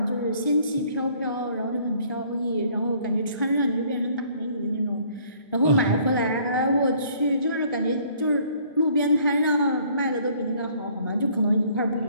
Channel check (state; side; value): inverted; both; correlation -0.59